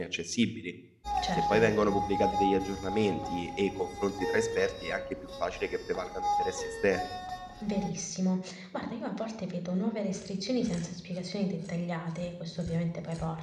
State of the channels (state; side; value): identical; both; correlation 1.00